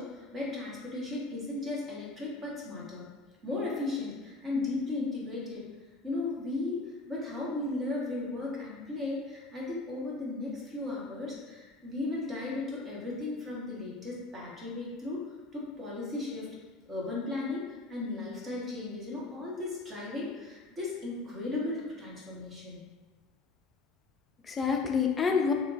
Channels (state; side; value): quieter; right; 3.3 dB